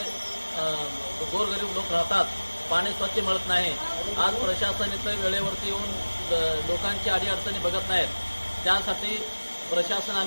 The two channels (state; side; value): inverted; both; correlation -1.00